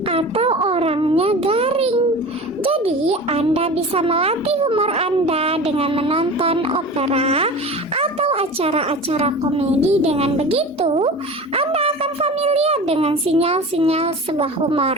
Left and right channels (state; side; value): normal; both; correlation 0.34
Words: Atau orangnya garing. Jadi Anda bisa melatih humor Anda dengan menonton opera atau acara-acara komedi. Dengan begitu, Anda akan familiar dengan sinyal-sinyal sebuah